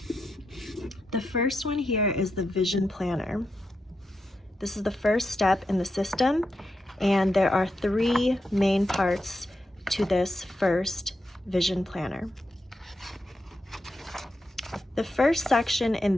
The first one here is the Vision Planner. This is the first step in the system, and there are three main parts to this first Vision Planner. The first section in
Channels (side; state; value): both; normal; correlation 0.86